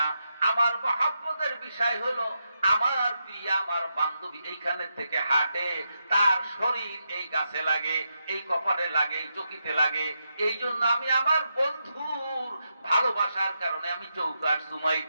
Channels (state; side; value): inverted; both; correlation -0.84